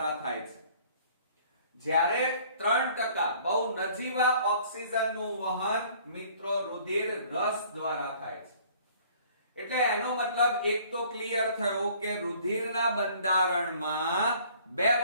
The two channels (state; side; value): inverted; both; correlation -0.55